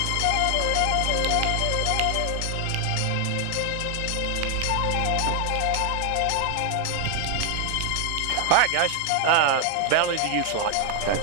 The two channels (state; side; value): different; both; correlation 0.00